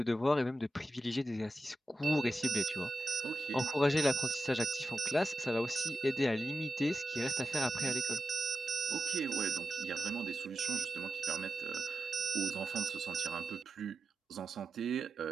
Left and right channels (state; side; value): normal; both; correlation 0.91